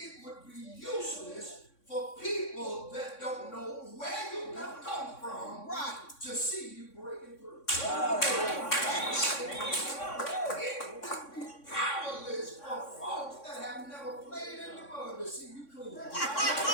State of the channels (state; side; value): late; right; 3.6 ms